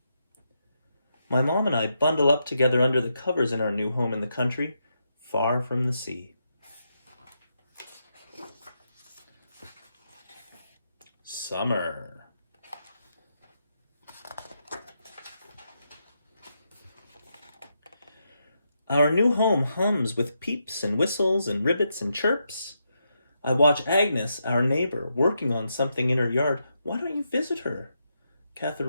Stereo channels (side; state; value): both; inverted; correlation -0.83